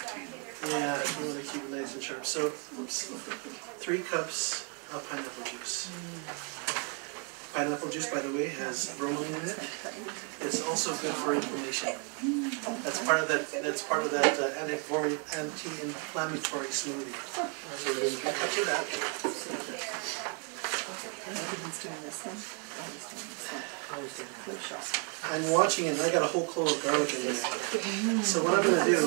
yeah, you want to keep it nice and sharp. So, oops, 3 cups of pineapple juice. Pineapple juice, by the way, has bromelain in it. It's also good for inflammation. That's part of that. That's part of that anti-inflammatory smoothie. So we're going to 3 cups of that. I'm watching it, and I got a whole clove of garlic in there. So what I'm going to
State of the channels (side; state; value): left; quieter; 37.4 dB